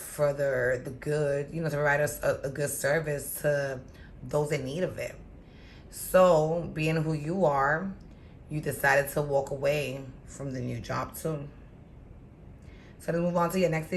the good, you know, to provide us a good service to those in need of it. So, being who you are, you decided to walk away from the new job too. So let's move on to your next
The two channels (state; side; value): identical; both; correlation 1.00